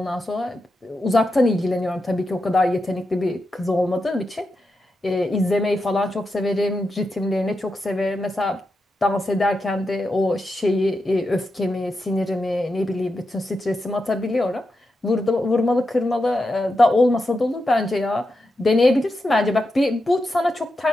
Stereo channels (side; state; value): both; normal; correlation 0.88